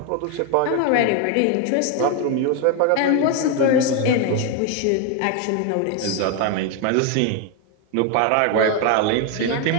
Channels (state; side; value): different; both; correlation 0.01